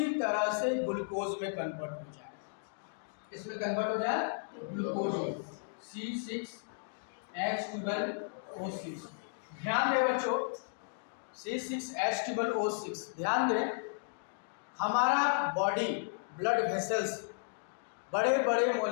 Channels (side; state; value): right; silent; digital silence